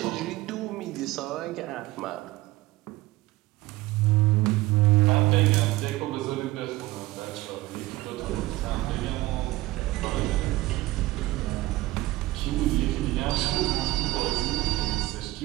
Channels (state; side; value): quieter; left; 18.6 dB